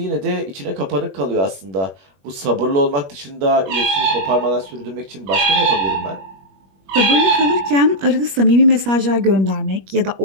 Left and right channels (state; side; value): late; left; 21 ms